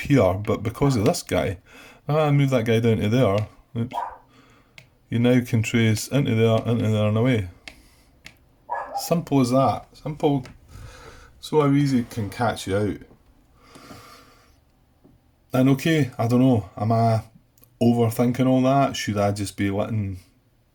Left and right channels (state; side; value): identical; both; correlation 1.00